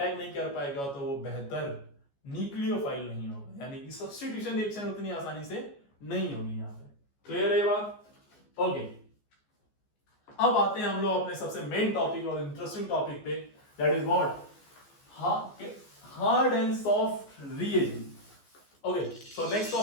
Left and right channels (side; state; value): right; late; 14 ms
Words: नहीं कर पाएगा तो वो बेहतर न्यूक्लियोफाइल नहीं होगा, यानी कि सब्स्टिट्यूशन रिएक्शन उतनी आसानी से नहीं होगी। यहां पे क्लियर है ये बात, ओके। अब आते हैं हम लोग अपने सबसे मेन टॉपिक और इंटरेस्टिंग टॉपिक पे, that is what hard and soft reagent. Okay, so next